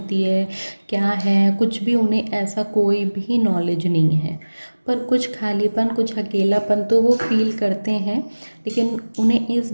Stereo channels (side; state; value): both; inverted; correlation -1.00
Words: है, क्या है, कुछ भी उन्हें ऐसा कोई भी नॉलेज नहीं है। पर कुछ खालीपन, कुछ अकेलापन तो वो फील करते हैं, लेकिन उन्हें इस